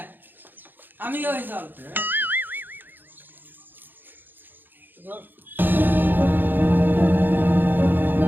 আমি ওই চল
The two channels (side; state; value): left; late; 0.092 ms